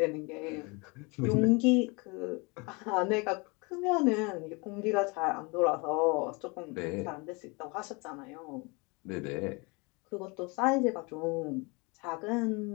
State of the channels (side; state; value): right; quieter; 28.7 dB